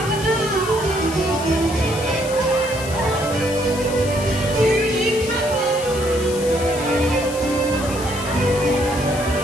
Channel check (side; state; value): left; noise; hiss, 11 dB below the sound